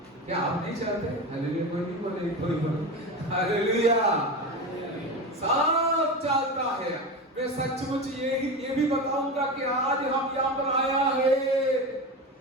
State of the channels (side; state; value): both; normal; correlation 0.24